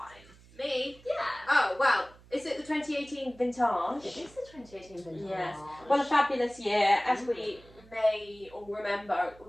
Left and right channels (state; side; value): noise; right; hum, 24 dB below the sound